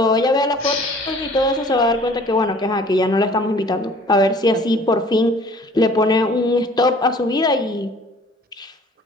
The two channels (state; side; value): normal; both; correlation 0.51